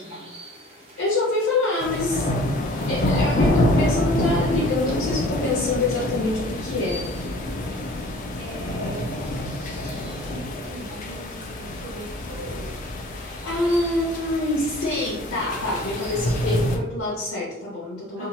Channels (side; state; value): both; normal; correlation 0.48